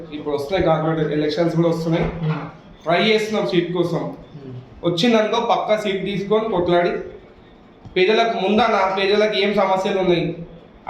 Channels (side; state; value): both; identical; correlation 1.00